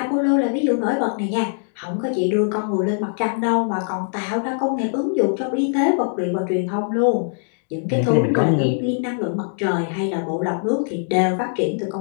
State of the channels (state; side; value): silent; right; digital silence